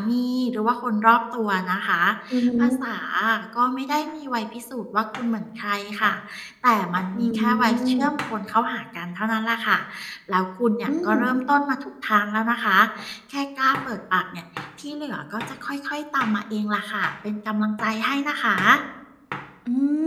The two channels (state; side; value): identical; both; correlation 1.00